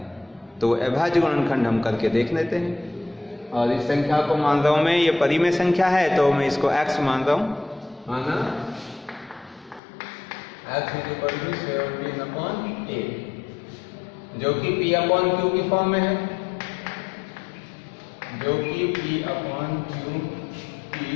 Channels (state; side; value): drops out; right; at 9.8 s